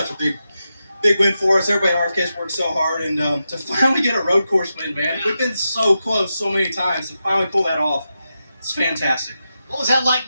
a big win for us. Everybody at RFK's worked so hard, and to finally get a road course win, man. We've been so close so many times. To finally pull that off, it's fantastic. What was that like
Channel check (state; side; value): inverted; both; correlation -0.89